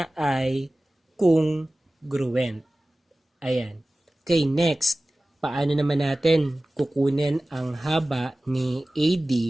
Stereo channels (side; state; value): both; normal; correlation 0.97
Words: ay congruent. Ayan. Okay, next. Paano naman natin kukunin ang haba ni